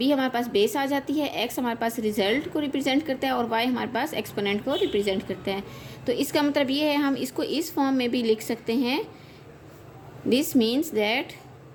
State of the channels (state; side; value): identical; both; correlation 1.00